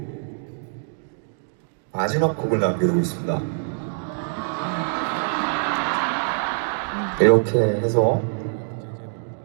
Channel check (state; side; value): silent; left; digital silence